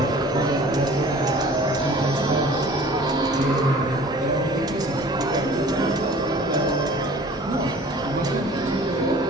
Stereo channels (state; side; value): normal; both; correlation 0.47